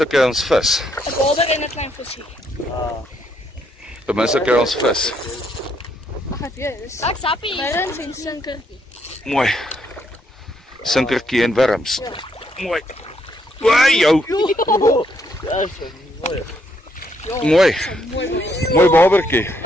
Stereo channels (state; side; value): normal; both; correlation 0.74